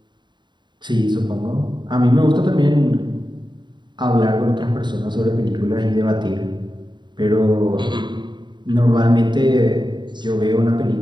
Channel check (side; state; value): left; late; 0.22 ms